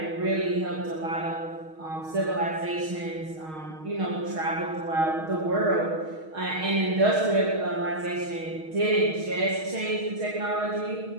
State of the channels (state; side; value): late; left; 6.4 ms